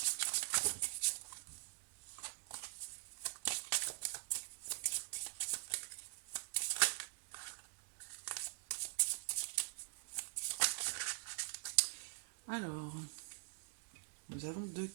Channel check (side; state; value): left; silent; digital silence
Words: Alors, nous avons deux